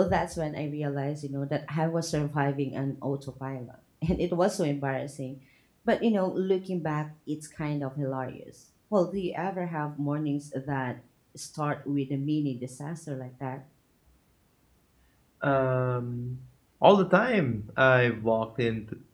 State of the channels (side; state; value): both; identical; correlation 1.00